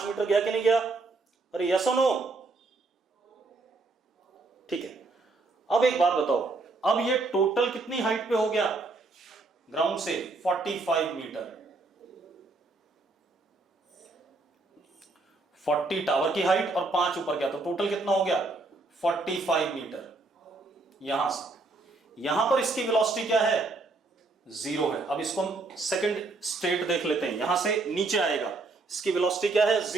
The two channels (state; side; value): quieter; left; 3.5 dB